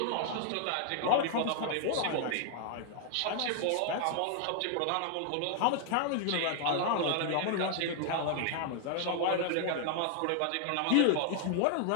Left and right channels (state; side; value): different; both; correlation 0.00